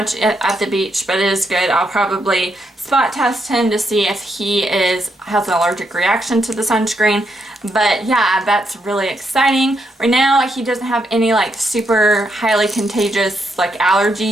at the beach, but it is good. I'll probably spot test him to see if he has an allergic reaction to the sunscreen. But yeah, that's really exciting. Right now he doesn't have any like super highly contagious like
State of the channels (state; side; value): normal; both; correlation 0.79